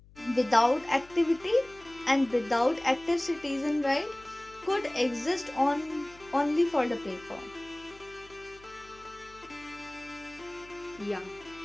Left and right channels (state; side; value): noise; left; hum, 24 dB below the sound